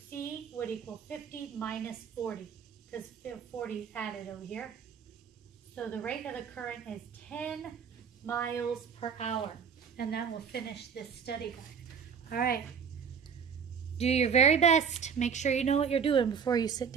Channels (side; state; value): left; quieter; 6.8 dB